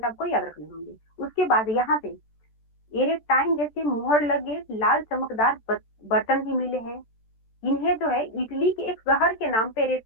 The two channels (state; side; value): late; right; 13 ms